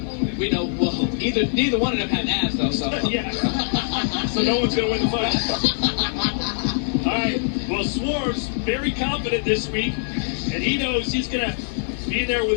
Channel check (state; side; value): silent; right; digital silence